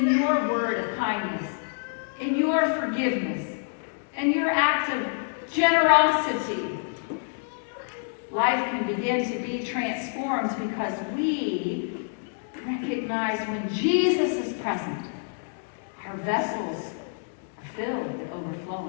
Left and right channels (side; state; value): right; silent; digital silence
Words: your word of kindness, in your forgiveness, in your act of generosity. Life can begin to be transformed because we recognize when Jesus is present, our vessels are filled and